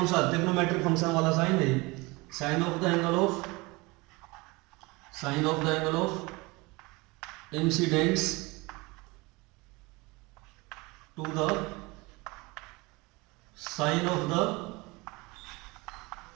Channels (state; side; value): quieter; left; 24.5 dB